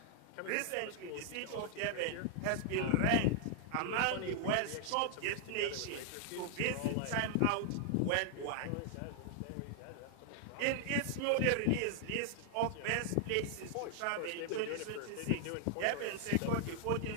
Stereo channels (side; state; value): both; different; correlation 0.00